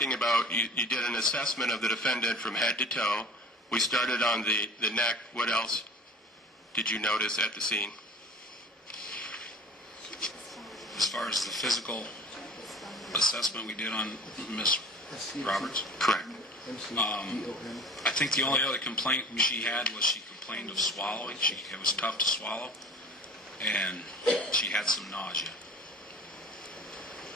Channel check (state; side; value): normal; both; correlation 0.42